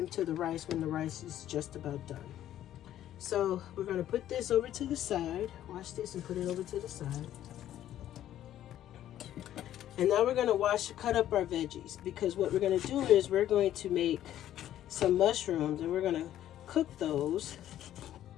to the rice when the rice is just about done. So we're going to put this over to the side. Wash this and put it over to the side. And now we're going to cut up our veggies, because what we're going to do is we're going to make some mushrooms, and we're going to cook those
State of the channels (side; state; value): right; quieter; 12.0 dB